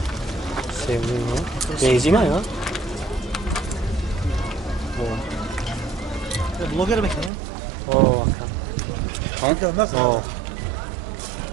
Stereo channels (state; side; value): drops out; left; at 7.3 s